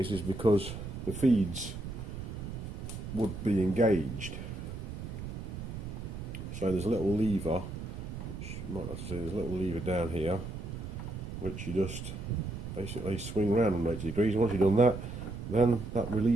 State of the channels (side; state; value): right; noise; rumble, 8 dB below the sound